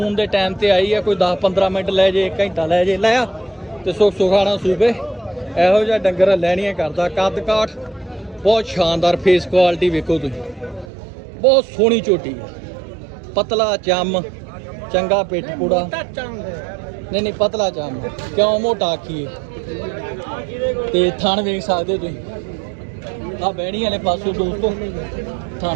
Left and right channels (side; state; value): left; drops out; at 10.9 s